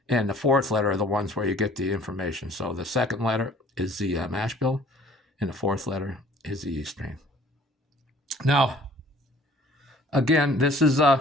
the fourth letter are the ones where you get the information. So the second letter is the mash bill, and the fourth letter is the yeast strain. Now, again, this is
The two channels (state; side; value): normal; both; correlation 0.53